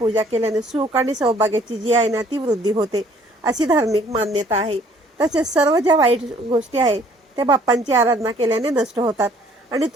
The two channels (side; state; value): both; normal; correlation 0.59